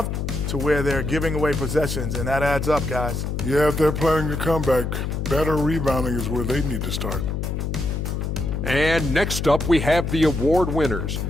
to where they're giving away possessions, and that adds up, guys. Yeah, if they're playing a comeback, better rebounding is where they need to start. And next up, we have the award winners,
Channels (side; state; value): left; noise; hum, 2 dB below the sound